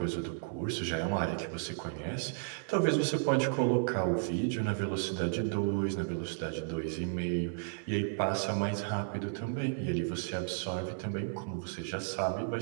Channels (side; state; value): left; silent; digital silence